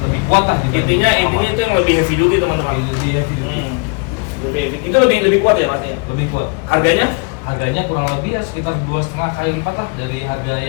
lebih kuat kan. Intinya itu yang lebih heavy duty teman-teman. Lebih heavy duty. Itu lebih kuat ya berarti? Lebih kuat. Harganya kurang lebih ya sekitar 2,5 kali lipat lah dari harga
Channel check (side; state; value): right; quieter; 33.6 dB